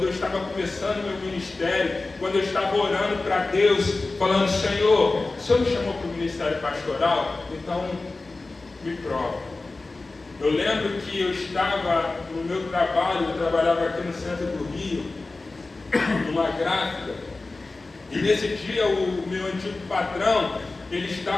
eu estava começando meu ministério, quando eu estava orando para Deus, falando: Senhor, o Senhor me chamou para o ministério pastoral, então me prova. Eu lembro que eu estava no meu trabalho, eu trabalhava aqui no centro do Rio, numa gráfica, e nesse dia o meu antigo patrão, ele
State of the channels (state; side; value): quieter; right; 3.4 dB